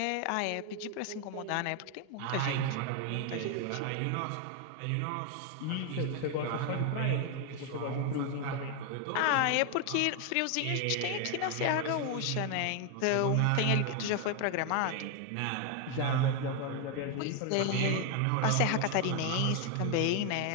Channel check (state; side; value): different; both; correlation 0.01